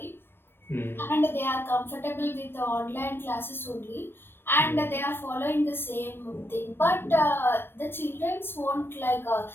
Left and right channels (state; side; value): late; right; 0.10 ms